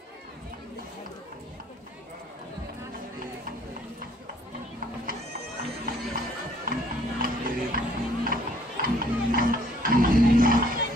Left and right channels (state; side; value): normal; both; correlation 0.61